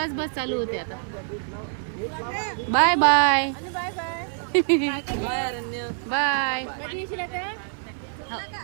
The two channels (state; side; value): silent; left; 61 dB below the other